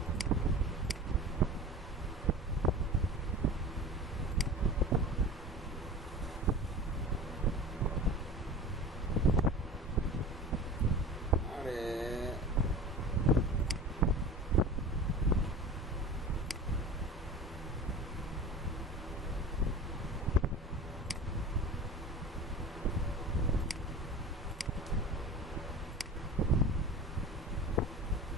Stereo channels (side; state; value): both; normal; correlation 0.36